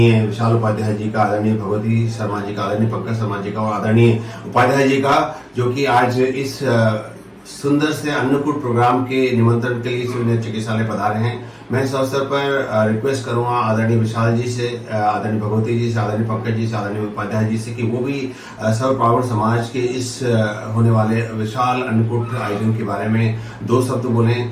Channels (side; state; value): both; identical; correlation 1.00